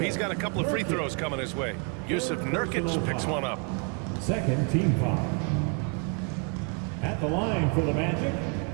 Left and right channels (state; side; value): quieter; left; 36.6 dB